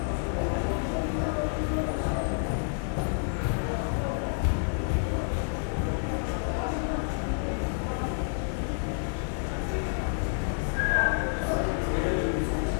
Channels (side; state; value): right; silent; 57 dB below the other